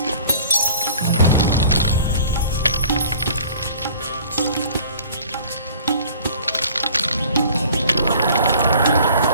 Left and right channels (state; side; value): inverted; both; correlation -0.49